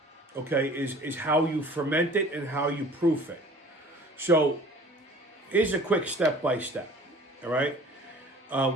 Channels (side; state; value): both; normal; correlation 0.47